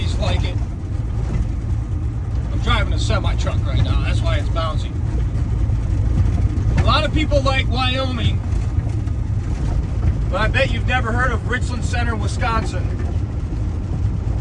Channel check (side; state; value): both; identical; correlation 1.00